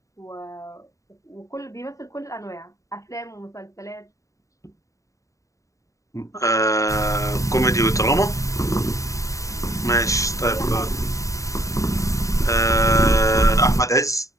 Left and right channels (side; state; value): right; late; 0.16 ms